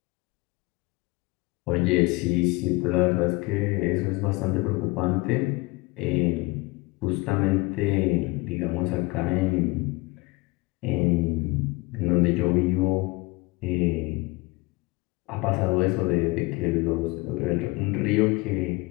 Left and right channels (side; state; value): right; quieter; 23.7 dB